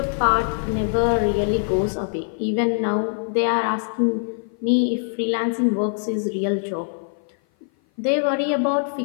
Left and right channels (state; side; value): silent; right; 56 dB below the other